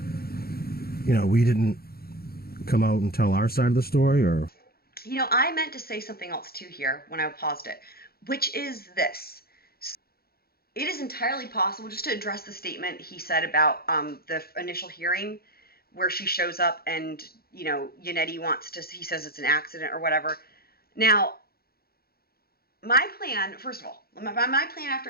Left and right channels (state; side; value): late; right; 0.44 ms